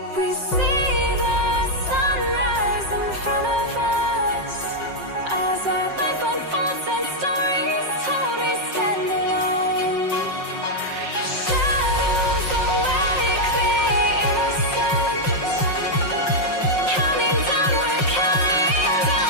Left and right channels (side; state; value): right; late; 5.5 ms